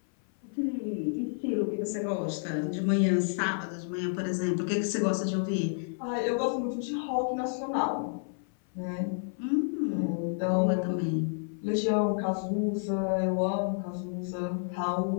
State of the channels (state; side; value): silent; right; 55 dB below the other